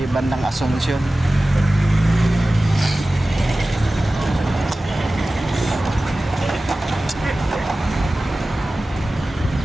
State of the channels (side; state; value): both; normal; correlation 0.96